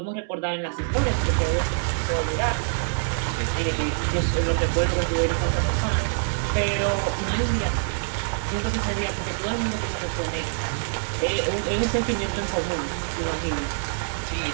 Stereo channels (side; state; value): left; silent; digital silence